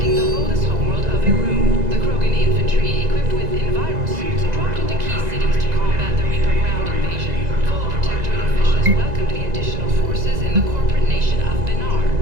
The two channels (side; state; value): left; late; 2.0 ms